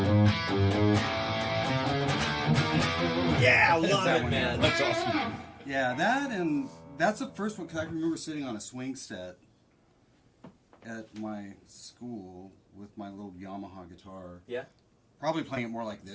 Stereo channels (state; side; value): identical; both; correlation 1.00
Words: Yeah, I love that it, one, man. That's awesome. Yeah, that and that's the first one because I can remember sitting on a swing set at my school with my little Yamaha guitar. Yeah. Probably playing it more like